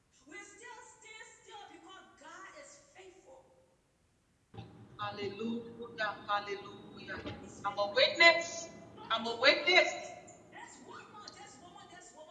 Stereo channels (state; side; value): identical; both; correlation 1.00